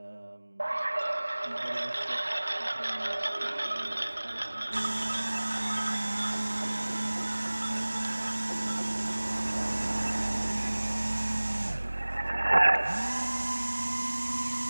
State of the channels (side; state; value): both; inverted; correlation -1.00